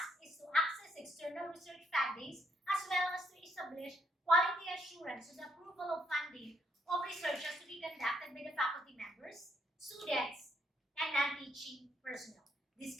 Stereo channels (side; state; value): both; normal; correlation 0.74